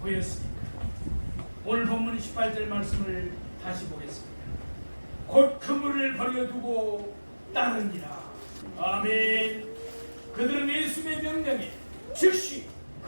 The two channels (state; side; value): inverted; both; correlation -1.00